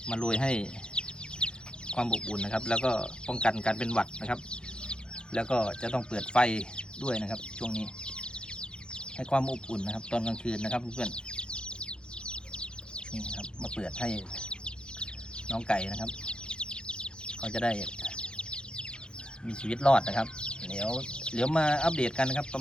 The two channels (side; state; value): right; late; 0.049 ms